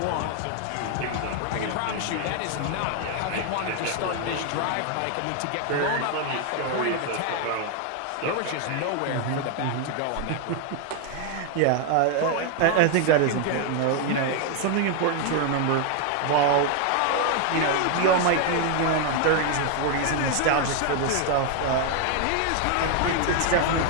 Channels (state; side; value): different; both; correlation 0.01